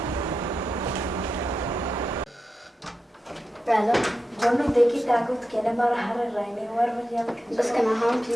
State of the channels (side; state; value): both; normal; correlation 0.90